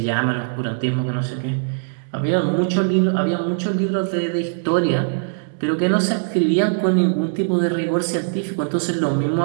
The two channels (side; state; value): left; silent; digital silence